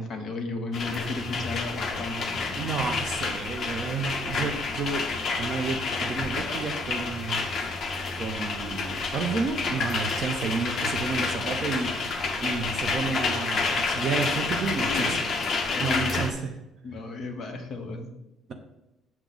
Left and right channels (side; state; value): both; normal; correlation 0.65